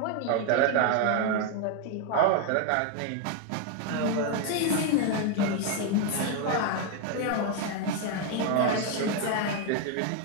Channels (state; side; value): different; both; correlation 0.01